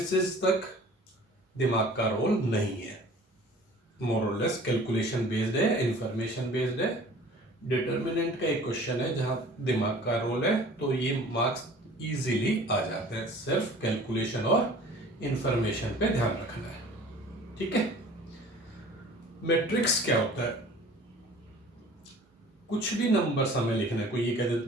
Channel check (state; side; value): normal; both; correlation 0.47